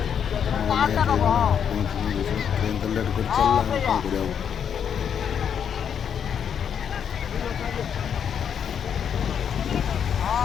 ଟ୍ରେନ୍ ତ ଲେଟ୍ କରି ଚାଲିଲା କ'ଣ କରିବା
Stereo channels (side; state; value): right; quieter; 8.0 dB